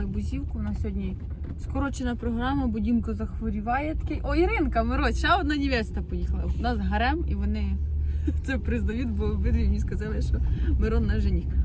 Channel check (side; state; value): both; identical; correlation 1.00